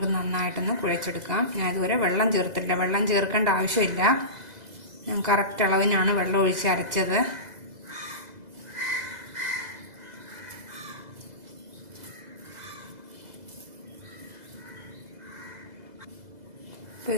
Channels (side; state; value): left; late; 2.0 ms